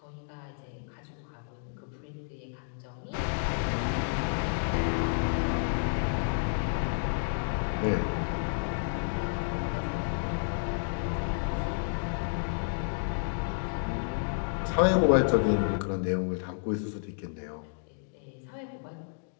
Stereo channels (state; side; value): silent; right; digital silence